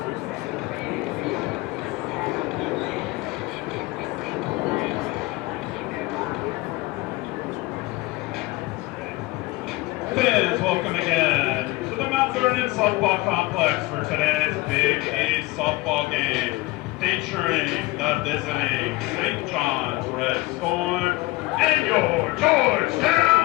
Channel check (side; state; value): right; quieter; 21.1 dB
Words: welcome again to the Mount Vernon Softball Complex for today's Big East softball game, featuring the visiting St. John's Red Storm and your